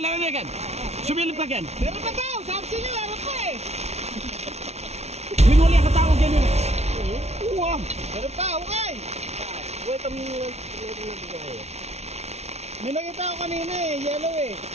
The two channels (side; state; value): left; late; 0.31 ms